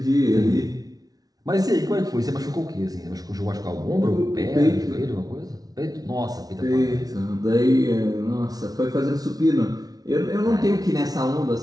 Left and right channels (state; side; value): late; left; 0.18 ms